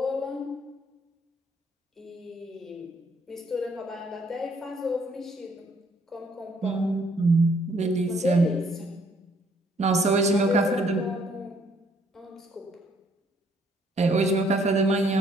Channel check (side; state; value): both; normal; correlation 0.66